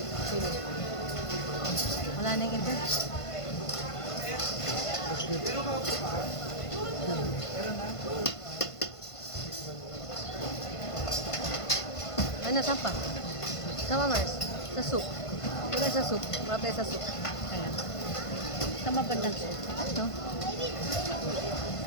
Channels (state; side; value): late; right; 1.5 ms